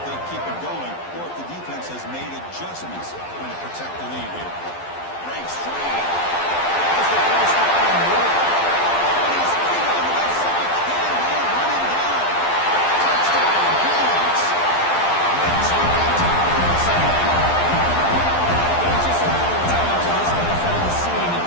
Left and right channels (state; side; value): late; right; 11 ms